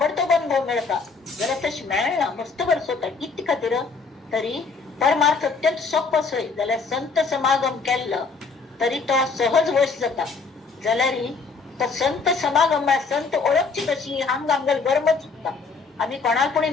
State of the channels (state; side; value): quieter; right; 4.6 dB